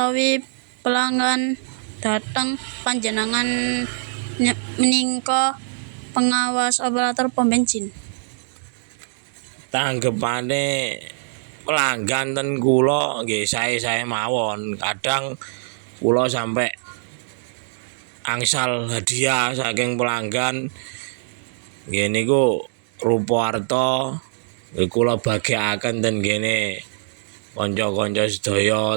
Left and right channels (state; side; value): silent; left; digital silence